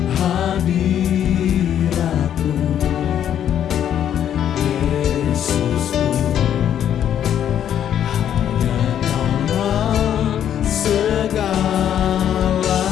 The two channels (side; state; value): right; quieter; 9.9 dB